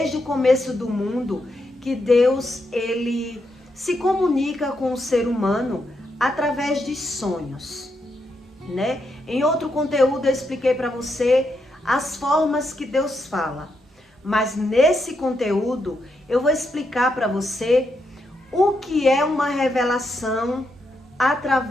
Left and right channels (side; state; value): both; normal; correlation 0.81